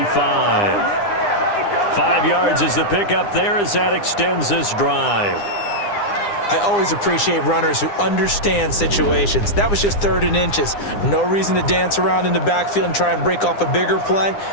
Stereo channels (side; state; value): right; late; 9.8 ms